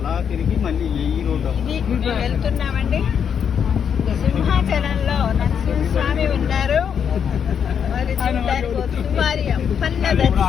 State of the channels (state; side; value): quieter; right; 7.7 dB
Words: వెళ్తున్నామండి. సింహాచలంలో నరసింహస్వామి ఉన్నారు. మరి చూడడానికి వారి అప్పన్న